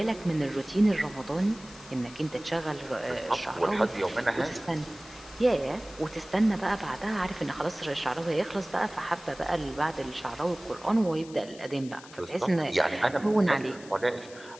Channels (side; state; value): left; noise; hiss, 19 dB below the sound